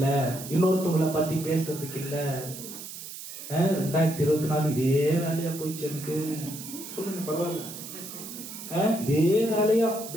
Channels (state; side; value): noise; right; hiss, 11 dB below the sound